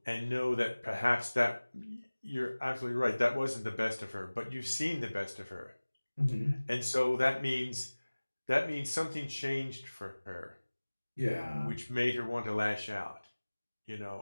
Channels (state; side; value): inverted; both; correlation -1.00